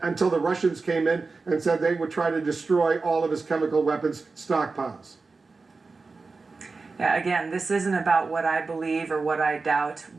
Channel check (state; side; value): quieter; left; 4.1 dB